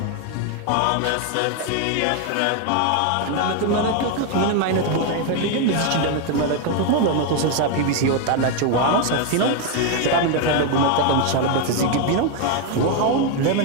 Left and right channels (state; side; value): different; both; correlation 0.01